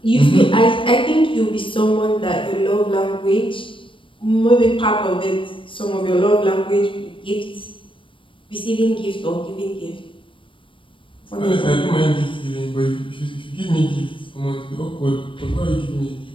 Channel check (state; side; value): late; right; 0.25 ms